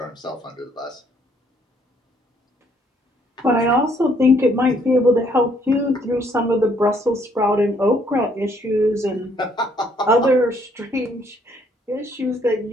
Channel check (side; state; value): both; normal; correlation 0.66